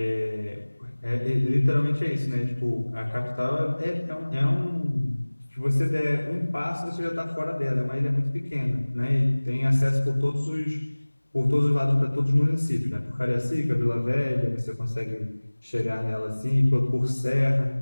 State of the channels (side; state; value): both; inverted; correlation -1.00